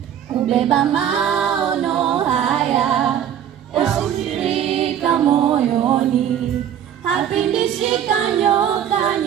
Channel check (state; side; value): quieter; left; 9.7 dB